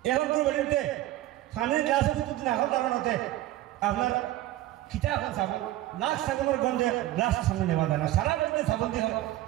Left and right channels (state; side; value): quieter; left; 15.3 dB